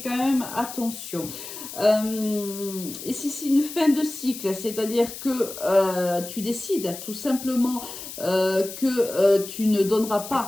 quand même attention. Et si c'est une fin de cycle, c'est-à-dire que tu décides tout simplement que tu ne donneras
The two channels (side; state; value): left; noise; hiss, 11 dB below the sound